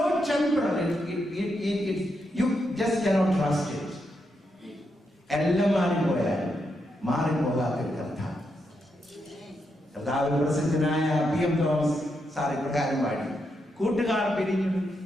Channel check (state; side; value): normal; both; correlation 0.82